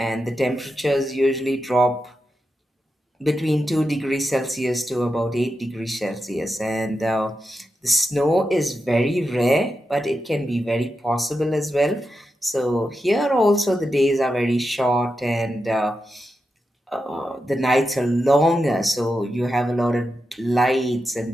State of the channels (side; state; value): both; normal; correlation 0.88